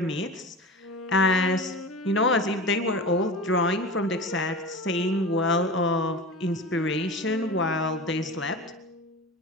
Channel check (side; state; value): both; normal; correlation 0.31